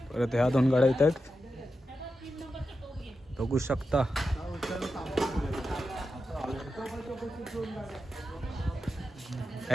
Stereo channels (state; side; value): normal; both; correlation 0.89